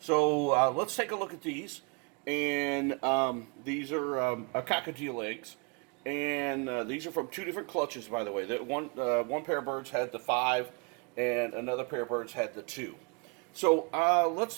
let's take a look at these. And these are cockatiel eggs, and these are from 2 different clutches, by the way. That one pair of birds had the 5, and another pair of birds had the 2. So let's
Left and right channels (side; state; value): left; quieter; 32.9 dB